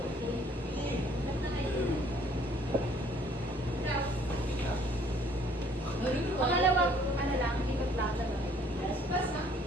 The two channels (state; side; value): normal; both; correlation 0.60